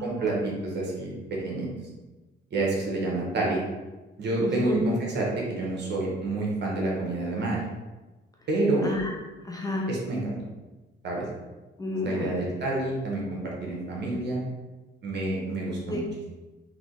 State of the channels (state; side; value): normal; both; correlation 0.55